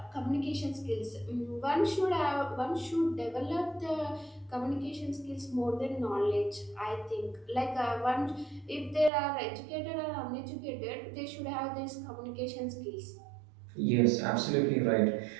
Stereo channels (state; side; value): drops out; left; at 9.1 s